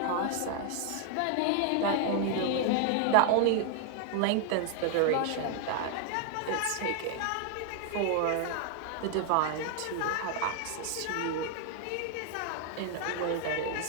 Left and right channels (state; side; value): different; both; correlation 0.00